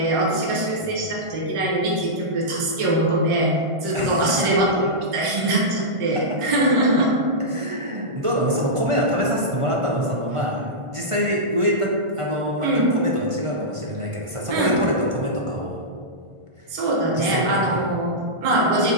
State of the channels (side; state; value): left; late; 1.5 ms